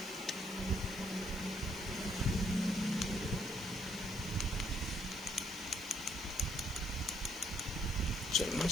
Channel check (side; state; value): left; noise; hiss, 17 dB below the sound